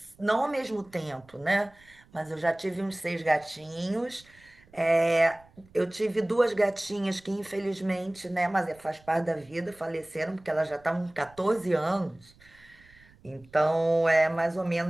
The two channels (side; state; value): right; noise; rumble, 28 dB below the sound